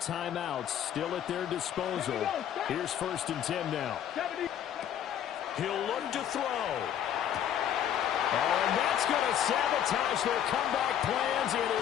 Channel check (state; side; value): quieter; right; 10.0 dB